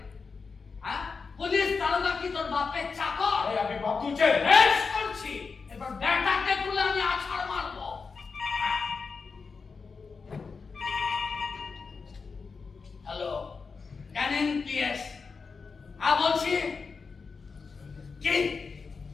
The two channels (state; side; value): quieter; right; 4.9 dB